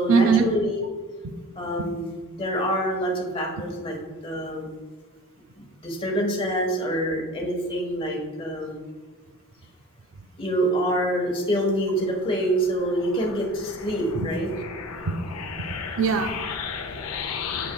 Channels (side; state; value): both; normal; correlation 0.42